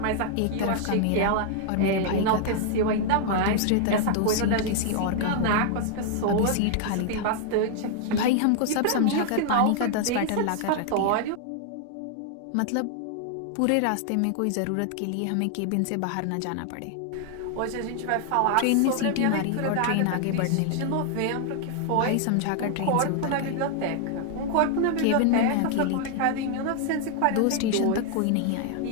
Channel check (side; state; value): both; different; correlation 0.00